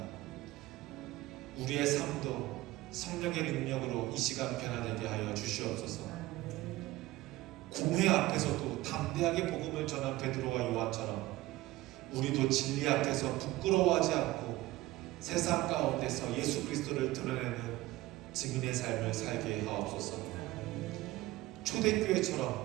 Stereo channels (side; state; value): left; quieter; 17.8 dB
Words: 우리의 삶도 성령의 능력으로 이 시간 변화되게 하여 주시옵소서. 공회 앞에서도 담대하게 복음을 전한 베드로와 요한처럼 우리도 진리 앞에서 부끄러워하지 않고 세상 가운데서 예수 그리스도를 드러내는 증인의 삶을 살게 하옵소서.